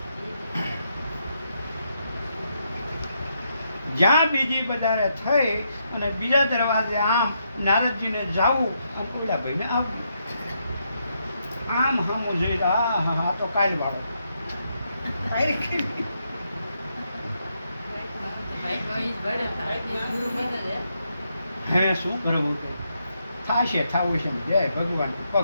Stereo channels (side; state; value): both; inverted; correlation -0.79